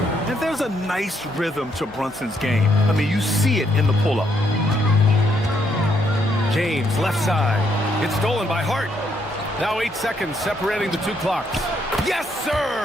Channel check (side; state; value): both; normal; correlation 0.74